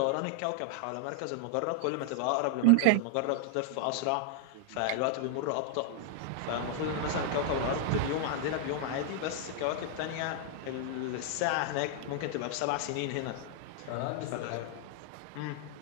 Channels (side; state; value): both; different; correlation 0.00